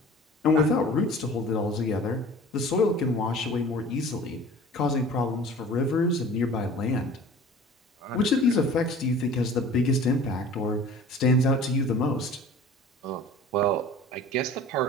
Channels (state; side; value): normal; both; correlation 0.44